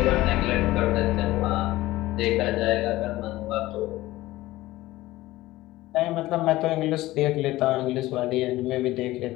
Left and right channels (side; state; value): right; quieter; 17.3 dB